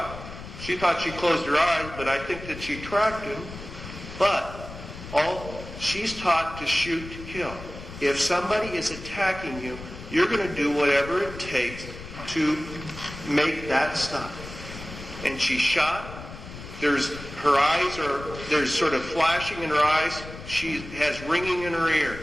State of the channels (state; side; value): noise; left; rumble, 13 dB below the sound